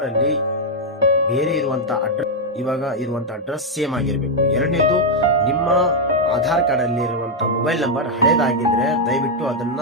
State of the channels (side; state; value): both; normal; correlation -0.02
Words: ಅಲ್ಲಿ ಬೇರೆ ಇರುವಂತ ಅಡ್ರೆಸ್ ಇವಾಗ ಇರುವಂತ ಅಡ್ರೆಸ್ ಸೇಮ್ ಆಗಿರ್ಬೇಕು. ಎರಡನೇದು, ನಿಮ್ಮ ಆಧಾರ್ ಕಾರ್ಡ್ ಅಲ್ಲಿ ಇರುವಂತ ಮೊಬೈಲ್ ನಂಬರ್ ಹಳೇದಾಗಿದ್ರೆ ದಯವಿಟ್ಟು ಅದನ್ನ